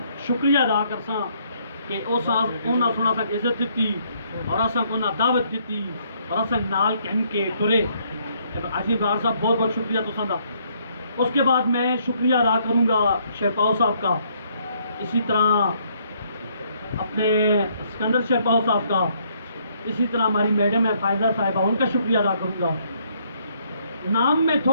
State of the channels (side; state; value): both; inverted; correlation -0.68